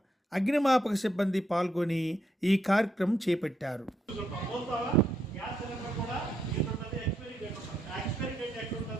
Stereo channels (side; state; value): both; normal; correlation 0.78